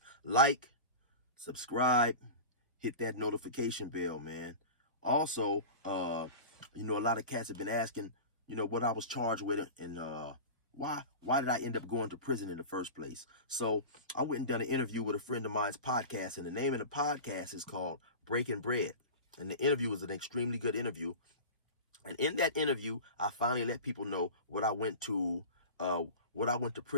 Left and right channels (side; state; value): both; inverted; correlation -0.31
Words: like, subscribe, hit that notification bell, man. Also, a lot of cats have been asking, what I was charged with and why did I end up going to prison in the first place? So I went and done an interview with a friend of mine's podcast, and the name of the podcast is called Breaking Bread. And the interview was an extremely good interview. And in that interview, I finally let people know what I went to